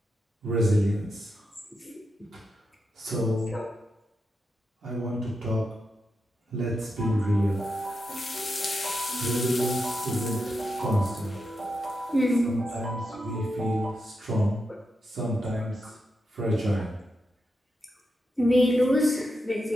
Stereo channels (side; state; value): both; normal; correlation 0.86